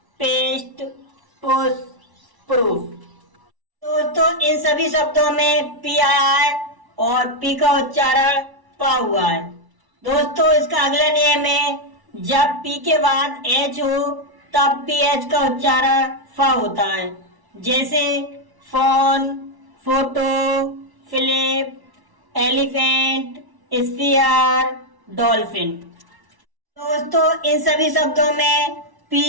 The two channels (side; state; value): left; late; 1.1 ms